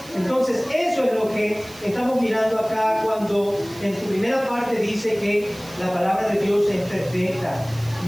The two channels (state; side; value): noise; right; hiss, 20 dB below the sound